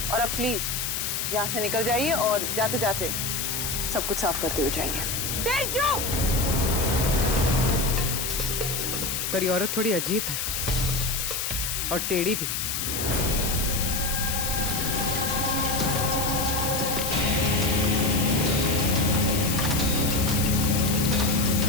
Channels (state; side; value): noise; left; hiss, 1 dB below the sound